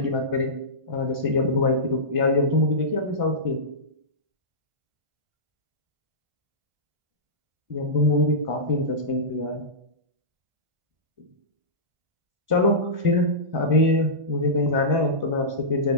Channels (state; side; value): late; left; 1.5 ms